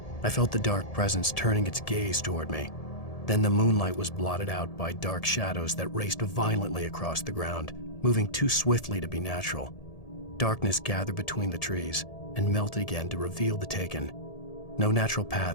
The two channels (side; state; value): right; late; 1.7 ms